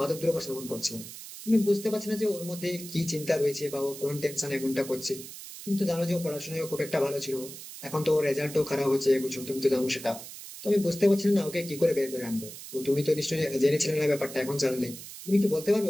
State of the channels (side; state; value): right; noise; hiss, 13 dB below the sound